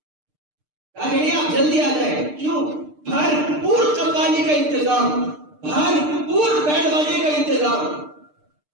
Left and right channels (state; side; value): late; left; 6.6 ms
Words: کہا کہ نہیں آپ جلدی آ جائیں. کیوں؟ بھرپور قوالی کا انتظام, بھرپور بینڈ باجے کا انتظام.